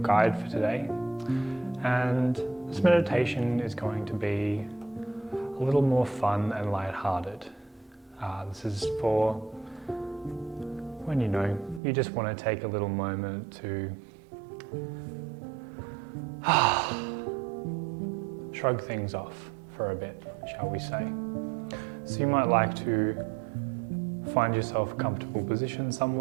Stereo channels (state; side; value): drops out; left; at 11.8 s